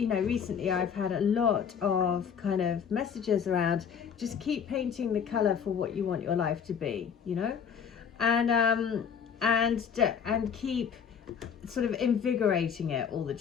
I've had a lot of kind of messages around just keep painting the color for what you want your life to be, and and keep sort of invigorating it all the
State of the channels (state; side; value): quieter; right; 7.3 dB